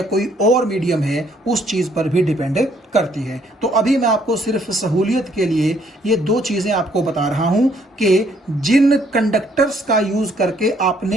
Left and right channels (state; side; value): normal; both; correlation 0.66